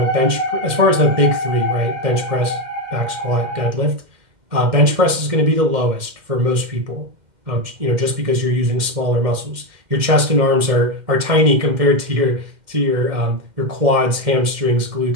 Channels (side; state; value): left; late; 2.1 ms